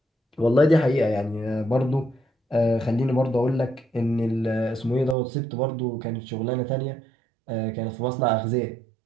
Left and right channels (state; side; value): drops out; left; at 5.2 s